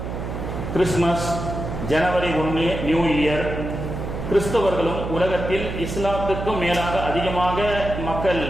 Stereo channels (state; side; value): noise; right; hum, 6 dB below the sound